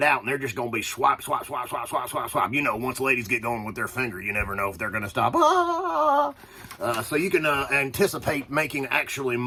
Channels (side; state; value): both; identical; correlation 1.00